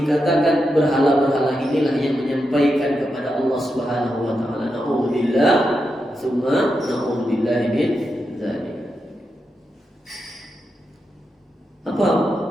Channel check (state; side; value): normal; both; correlation 0.87